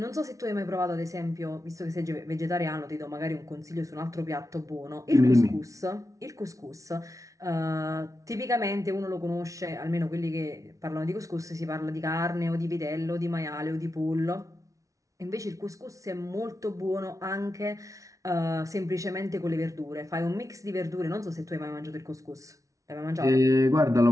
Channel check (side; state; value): left; late; 0.16 ms